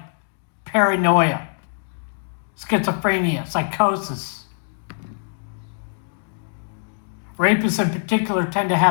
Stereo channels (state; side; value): silent; right; digital silence